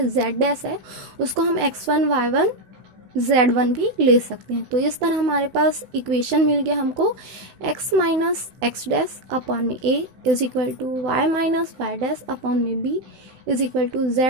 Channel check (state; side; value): late; left; 16 ms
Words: z dash है उसको हम x1 y1 z1 भी ले सकते हैं। तो इस तरह हमारे पास इक्वेशन मिल गया हमको x minus x dash upon में a is equal to y minus Y dash upon में b is equal to